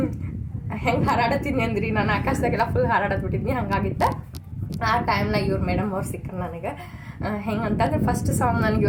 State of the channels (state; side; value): identical; both; correlation 1.00